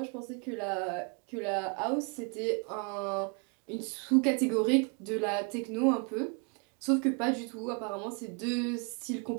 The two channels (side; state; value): left; quieter; 36.2 dB